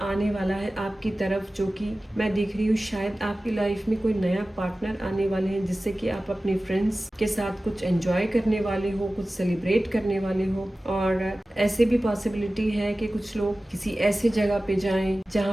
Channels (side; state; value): both; normal; correlation 0.96